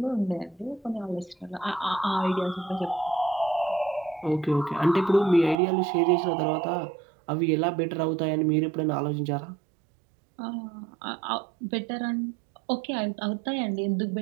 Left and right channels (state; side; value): drops out; left; at 5.6 s